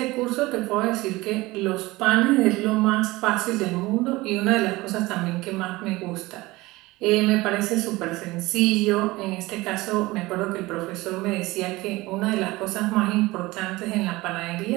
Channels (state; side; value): quieter; left; 20.4 dB